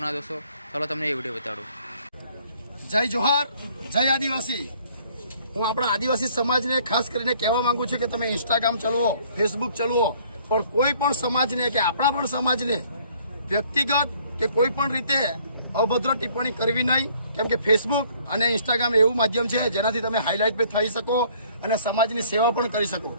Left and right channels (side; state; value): both; inverted; correlation -0.59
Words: दोस्तों। चलो तुमने ये वीडियो बताड़ू। जय जोहार, जय आदिवासी। हूँ अपना आदिवासी समाज ने खास करीने कहेवा मांगू छुं के तमे इंस्टाग्राम चलवो, फेसबुक चलवो, पण कोई पण समाज ने के आपणा पण समाज ने व्यक्तिगत के कोई पण रीते अभद्र टिप्पणी करवी नहीं, केम के फेसबुक और इंस्टाग्राम एवं माध्यम है जेनाथी तमे हाईलाइट पे थई सको और समाजनी सेवा पण करी सको।